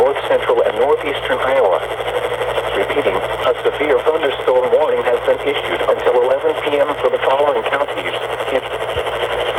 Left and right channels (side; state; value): both; identical; correlation 1.00